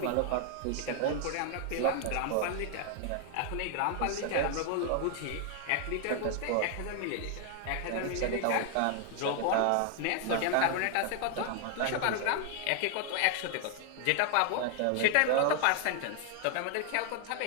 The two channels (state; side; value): different; both; correlation 0.00